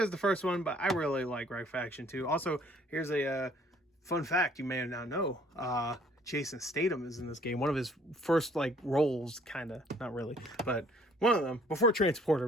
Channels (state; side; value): normal; both; correlation 0.59